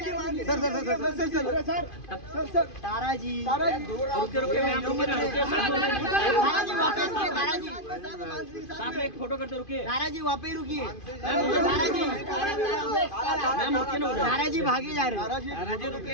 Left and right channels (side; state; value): right; late; 2.5 ms